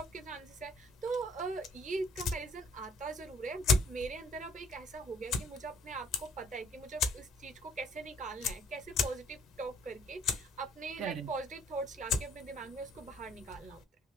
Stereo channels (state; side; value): normal; both; correlation 0.60